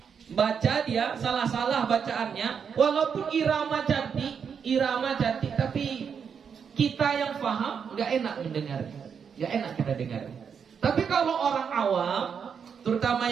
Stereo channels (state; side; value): quieter; left; 6.9 dB